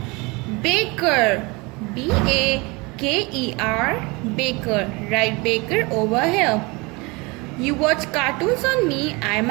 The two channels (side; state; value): left; quieter; 26.3 dB